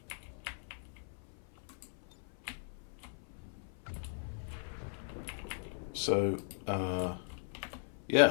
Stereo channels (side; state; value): right; silent; 52 dB below the other